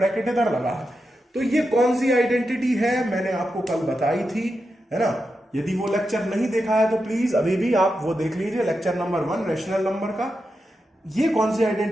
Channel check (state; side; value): normal; both; correlation 0.88